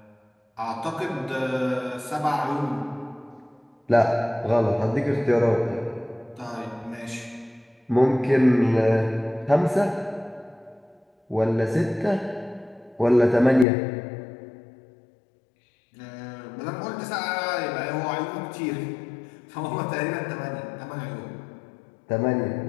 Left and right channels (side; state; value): right; drops out; at 13.7 s